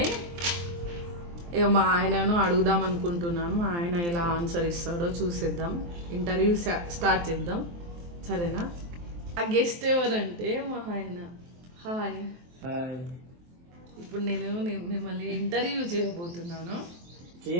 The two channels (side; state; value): left; late; 23 ms